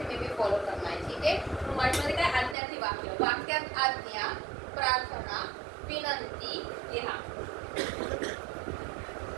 में भी फॉलो करना है. ठीक है. तो मराठीमध्ये काय? आज्ञार्थी वाक्य. वाक्यात आज्ञा, प्रार्थना, विनंती लिहा.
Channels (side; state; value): left; drops out; at 2.6 s